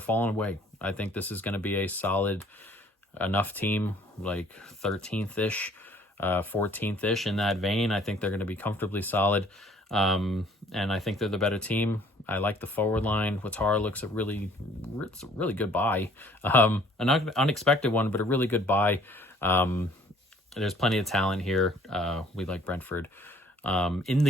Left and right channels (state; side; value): normal; both; correlation 0.57